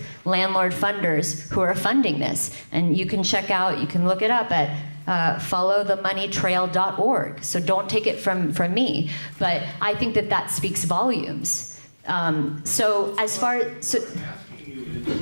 landlord funders who are funding this. And you can check out, you can look it up at followthemoneytrail.org. So don't take it from me. But I think that speaks volumes. So as far as... What I'm asking you is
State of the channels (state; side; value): inverted; both; correlation -1.00